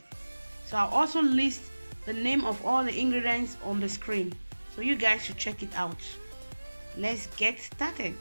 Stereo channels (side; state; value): both; inverted; correlation -1.00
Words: So I'll also list the name of all the ingredients on the screen, so you guys should check it out. Let's get started.